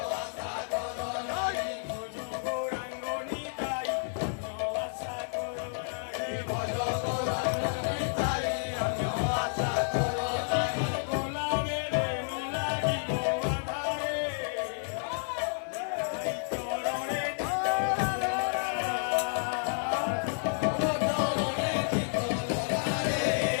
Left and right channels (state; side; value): silent; right; digital silence